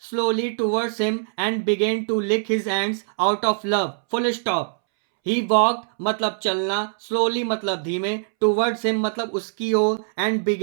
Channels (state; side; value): silent; left; 64 dB below the other